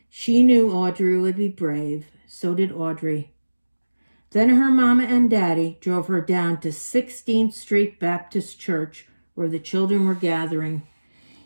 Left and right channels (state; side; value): inverted; both; correlation -1.00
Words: She knew Audrey would be brave. So did Audrey. Then her mama and daddy drove her down to 16th Street Baptist Church, where the children were gathering.